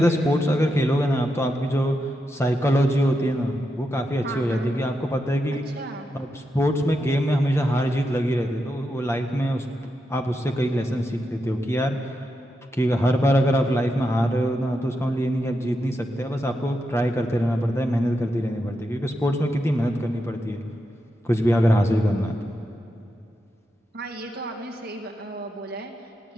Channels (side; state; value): both; normal; correlation 0.86